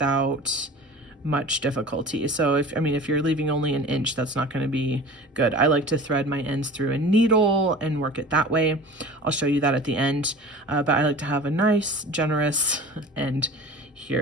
much difficulty. So if you're leaving only an inch, that's not going to be good. I like to thread my ends through a needle and work it that way. I'll show you that at the end, but I like to have a nice, generous end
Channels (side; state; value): both; normal; correlation 0.39